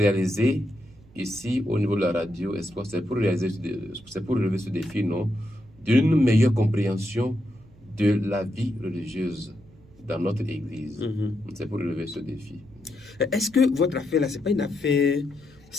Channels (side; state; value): right; noise; rumble, 25 dB below the sound